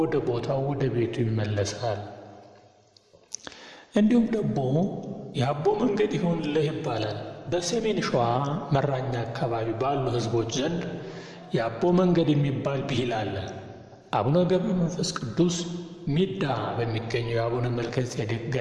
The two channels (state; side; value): identical; both; correlation 1.00